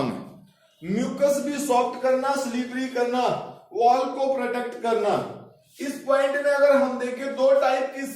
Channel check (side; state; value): both; identical; correlation 1.00